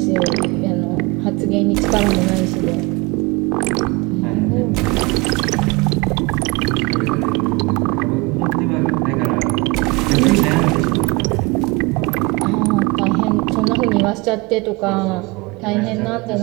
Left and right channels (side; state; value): left; quieter; 25.9 dB